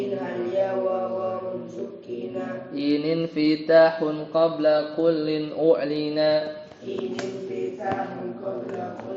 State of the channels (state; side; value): identical; both; correlation 1.00